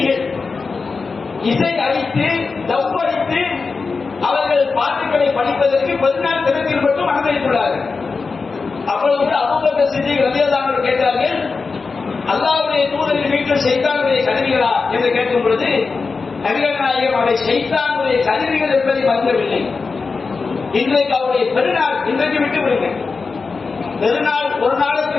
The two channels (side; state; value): right; quieter; 4.5 dB